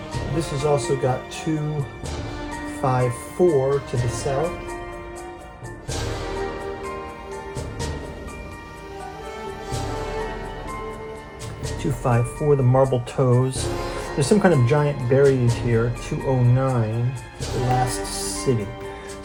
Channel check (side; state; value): both; identical; correlation 1.00